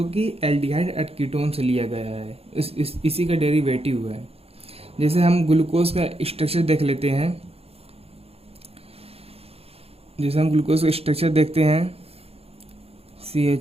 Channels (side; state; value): left; late; 0.29 ms